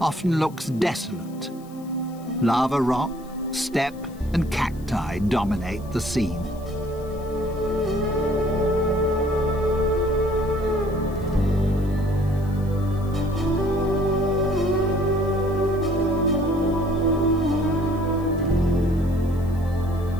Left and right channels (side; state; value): left; noise; hiss, 25 dB below the sound